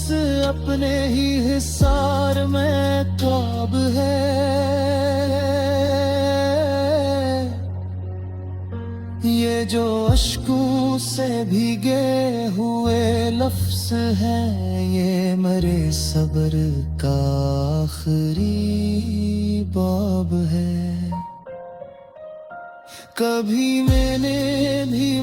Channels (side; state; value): both; identical; correlation 1.00